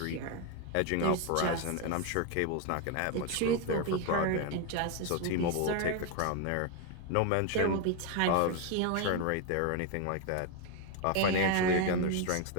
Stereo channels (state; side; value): different; both; correlation 0.01